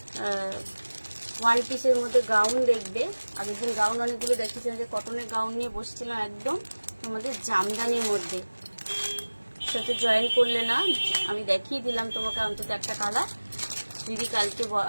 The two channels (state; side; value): inverted; both; correlation -1.00